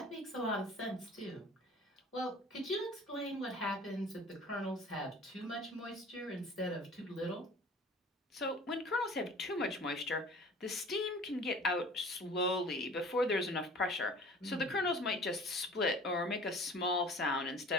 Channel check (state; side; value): normal; both; correlation 0.45